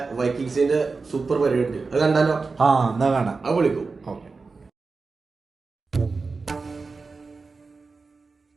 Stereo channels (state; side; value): quieter; left; 4.2 dB